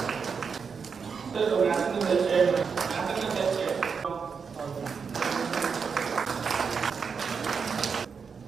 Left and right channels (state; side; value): quieter; left; 5.9 dB